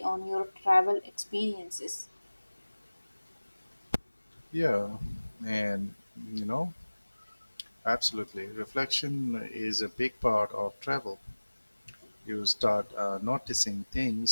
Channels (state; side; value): inverted; both; correlation -1.00